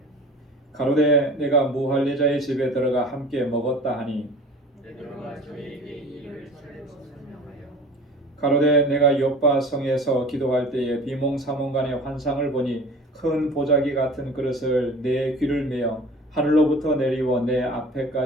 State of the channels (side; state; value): both; normal; correlation 0.42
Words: 가로되 내가 무할례자의 집에 들어가 함께 먹었다 하니 베드로가 저에게 이 일을 차례로 설명하여 가로되 내가 요빠 성에서 기도할 때에 비몽사몽간의 환상을 보니 큰 보자기 같은 그릇을 내 귀를 메어 하늘로부터 내리워 내